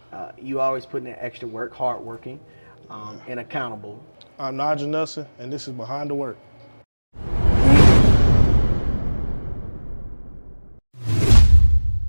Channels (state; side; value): inverted; both; correlation -1.00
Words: You always put in that extra work, hardworking, and accountable. I'm Nigel Nelson, and this is Behind the Work.